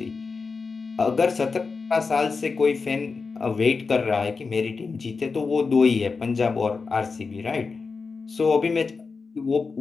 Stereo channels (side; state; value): right; quieter; 4.6 dB